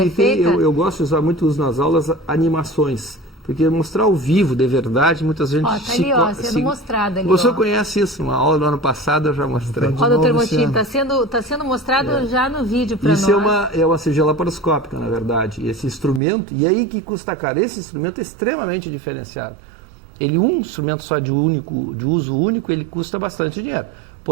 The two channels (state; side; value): drops out; left; at 16.2 s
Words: é feita? Eu gosto de usar muito nas aulas animações, porque mostrar ao vivo, de verdade, muitas vezes... Ó, tá ali, ó, sendo mostrada ali, Você ó. conhece isso, uma aula do ano passado eu já mostrei. Ó, doutor Motim, tá sendo mostrado já no vídeo para nós. Isso é uma cirurgia laparoscópica, na verdade. Esse instrumento, e aí que custa caro, esse instrumento é extremamente diferenciado. Ele, um instrumento só de uso único, ele custa bastante dinheiro.